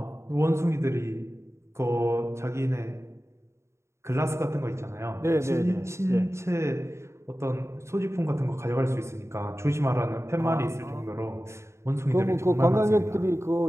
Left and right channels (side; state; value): left; late; 0.13 ms